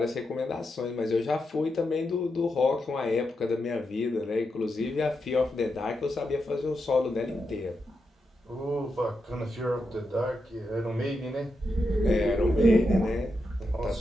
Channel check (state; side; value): normal; both; correlation 0.86